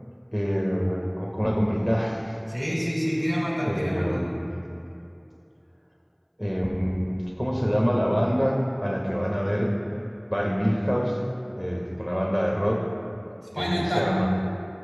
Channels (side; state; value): both; identical; correlation 1.00